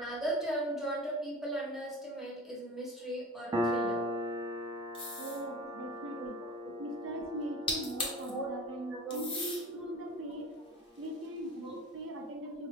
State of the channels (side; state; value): both; normal; correlation 0.37